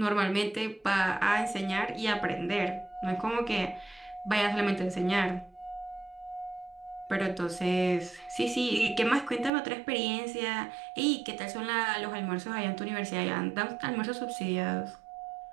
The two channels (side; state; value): left; drops out; at 9.5 s